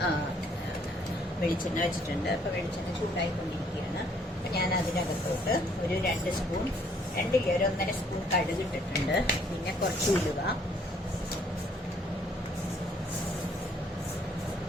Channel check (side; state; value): both; normal; correlation 0.64